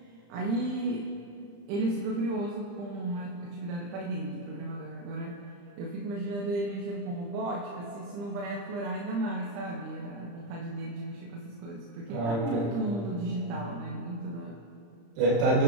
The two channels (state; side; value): late; left; 35 ms